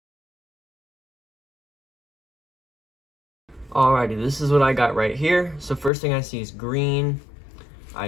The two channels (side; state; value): right; drops out; at 5.9 s